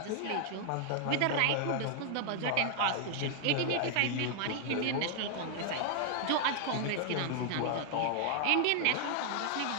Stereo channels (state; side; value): different; both; correlation 0.00